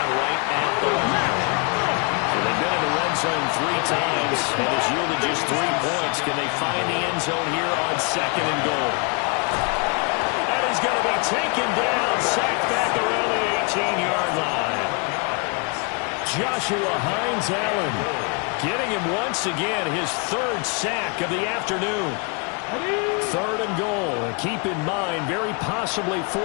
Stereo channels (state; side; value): quieter; right; 34.9 dB